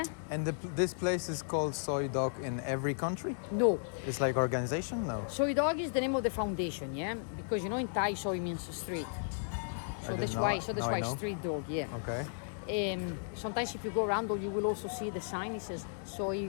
And this place is called Soi Dog in every country? no. It's like organization? No. Soi Dog is the name of the foundation, yeah, because you know in Thai soy means street. So didn't that's know why. it. So that's Now I why know. street dog, yeah. Okay. Sometimes if you go around, you will also see the sign. It says Soi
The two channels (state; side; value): silent; right; 55 dB below the other